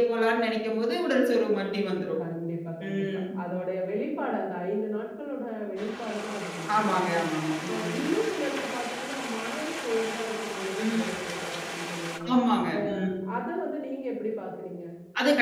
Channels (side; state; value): both; identical; correlation 1.00